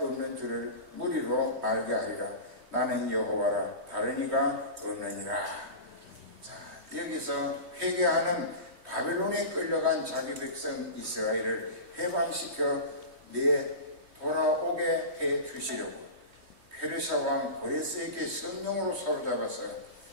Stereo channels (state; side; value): late; left; 3.2 ms